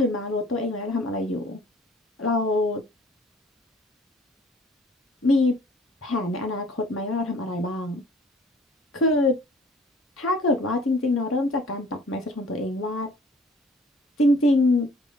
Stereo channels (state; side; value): normal; both; correlation 0.54